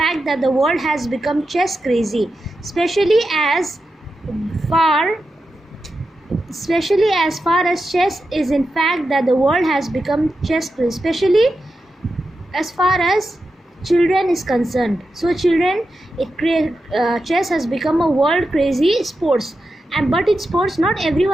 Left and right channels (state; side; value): normal; both; correlation 0.89